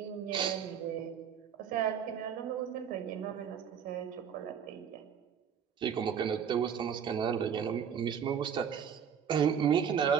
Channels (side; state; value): left; quieter; 7.9 dB